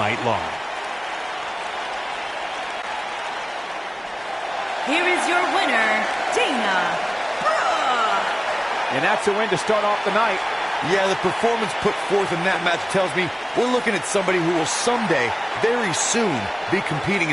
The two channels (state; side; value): identical; both; correlation 1.00